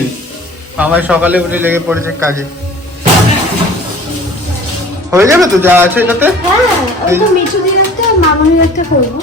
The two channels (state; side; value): normal; both; correlation 0.47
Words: আমার সকালে উঠে লেগে পড়েছে কাজে। হয়ে যাবে তো যা আছে এটাতে।